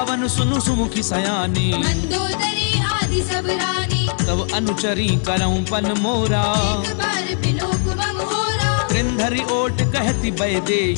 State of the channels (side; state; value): right; silent; digital silence